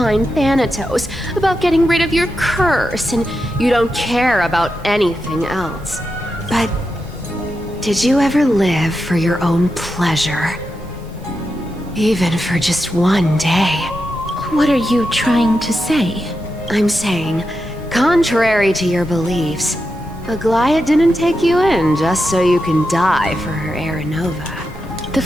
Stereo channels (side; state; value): both; normal; correlation 0.88